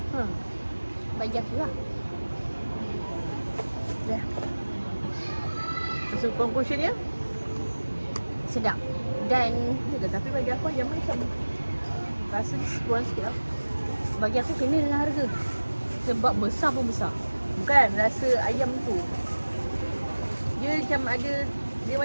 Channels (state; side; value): inverted; both; correlation -1.00